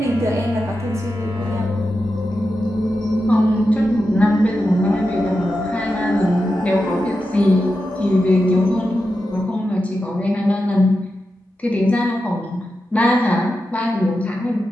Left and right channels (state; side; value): normal; both; correlation 0.90